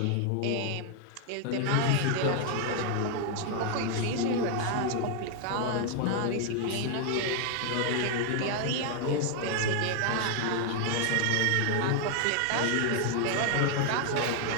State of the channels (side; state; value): both; different; correlation 0.00